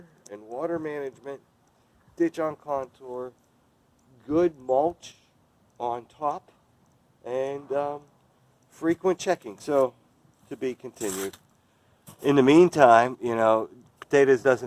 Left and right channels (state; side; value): identical; both; correlation 1.00